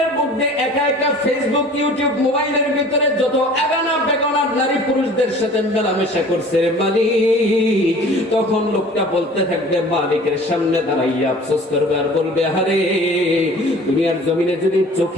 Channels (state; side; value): normal; both; correlation 0.46